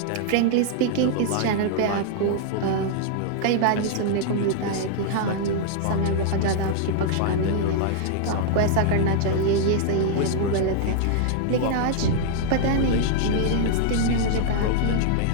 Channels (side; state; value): both; different; correlation -0.01